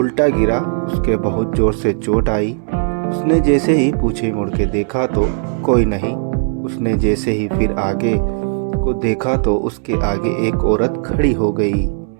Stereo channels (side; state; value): left; silent; 68 dB below the other